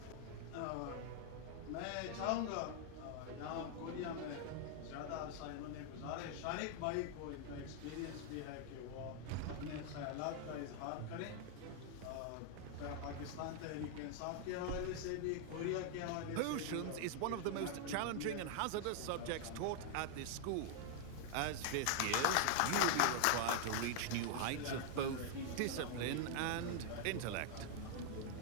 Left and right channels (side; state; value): both; different; correlation 0.00